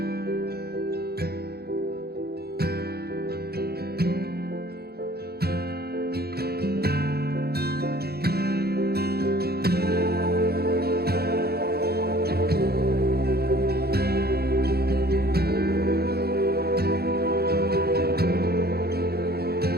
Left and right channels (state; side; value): late; left; 0.46 ms